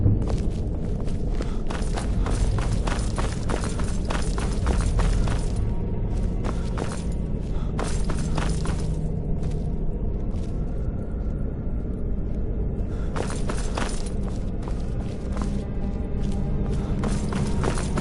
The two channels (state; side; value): identical; both; correlation 1.00